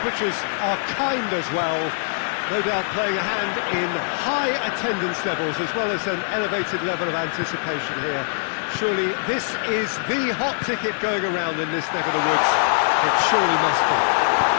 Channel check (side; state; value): right; silent; digital silence